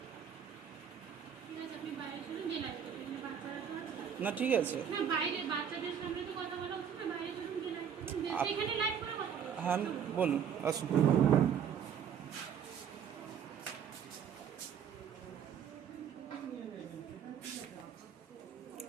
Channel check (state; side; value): quieter; left; 8.1 dB